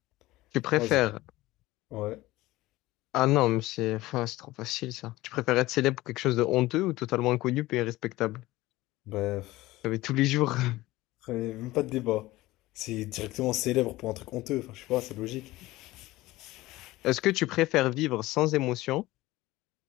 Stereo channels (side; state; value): right; quieter; 18.3 dB